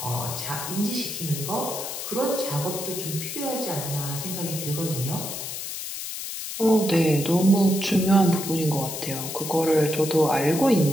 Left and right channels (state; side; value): noise; left; hiss, 6 dB below the sound